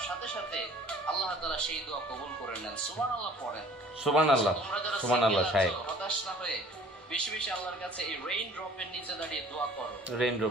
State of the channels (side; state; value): both; normal; correlation 0.52